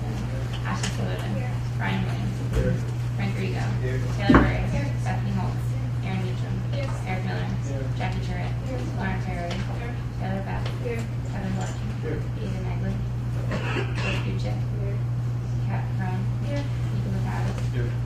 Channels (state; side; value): identical; both; correlation 1.00